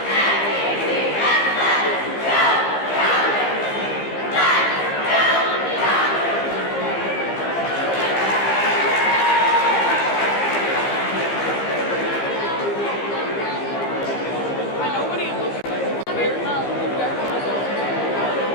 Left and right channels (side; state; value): right; late; 15 ms